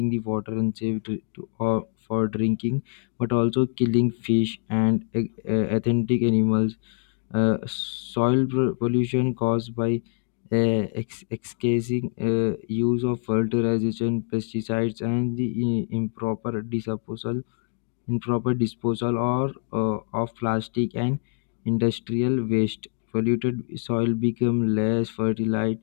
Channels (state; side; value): silent; right; 57 dB below the other